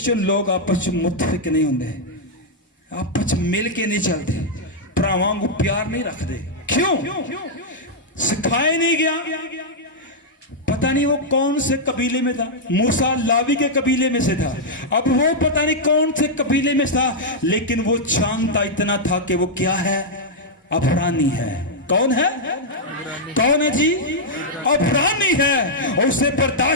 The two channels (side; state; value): both; normal; correlation -0.05